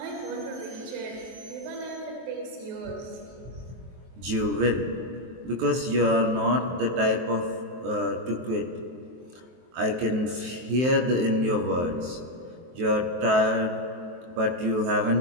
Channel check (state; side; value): late; left; 23 ms